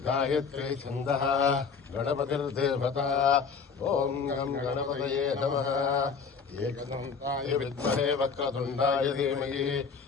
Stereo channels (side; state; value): right; quieter; 5.5 dB